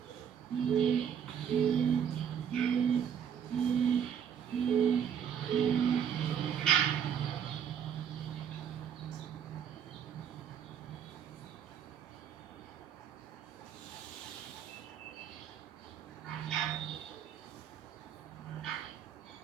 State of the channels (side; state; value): left; quieter; 8.3 dB